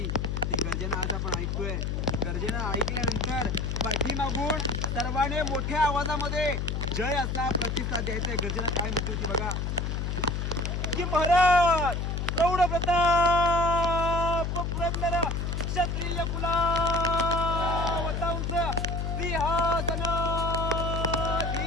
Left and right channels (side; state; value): left; noise; hum, 1 dB below the sound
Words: ती गर्जना आज आपण ऐकतोय. गर्जना ऐकल्यानंतर पाठीमागून सर्वांनी मोठ्या आवाजामध्ये जय असा प्रतिसाद द्यायचा. गर्जना काय म्हटली होती बघा की महाराज प्रौढ प्रताप पुरंदर क्षत्रिय कुलावतांस सिंहासनाधीश्वर